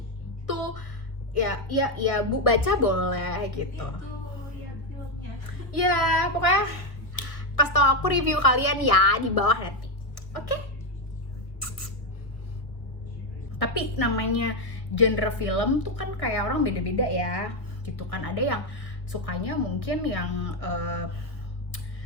to ya bu baca boleh gitu. Itu ya filmnya. Ya pokoknya pas tau aku review kalian ya di bawah nanti. Oke? Tapi namanya genre film tuh kan kayak orang beda-beda ya gitu kan. Ada yang sukanya mungkin yang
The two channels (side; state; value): right; late; 1.5 ms